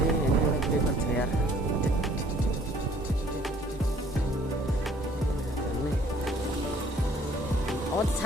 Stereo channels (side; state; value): both; normal; correlation 0.58